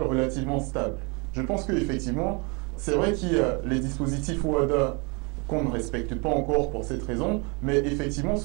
relativement stable. Je pense qu'effectivement, c'est vrai qu'il y a les dispositifs OHADA qu'on ne respecte pas encore pour cette raison, mais effectivement,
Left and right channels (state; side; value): quieter; left; 31.5 dB